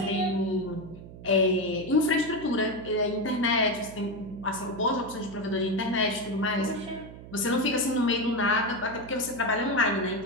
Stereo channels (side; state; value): right; noise; hum, 15 dB below the sound